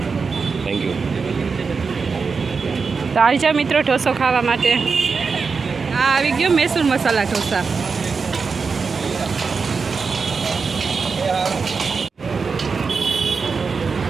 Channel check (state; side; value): quieter; left; 5.0 dB